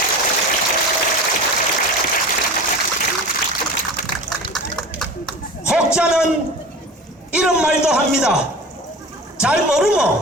혹자는 이런 말도 합니다. 잘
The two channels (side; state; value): both; normal; correlation 0.35